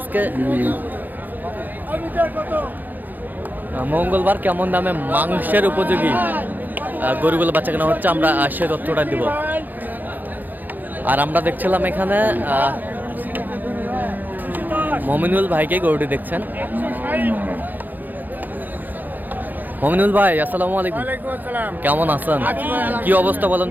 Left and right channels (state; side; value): late; left; 0.085 ms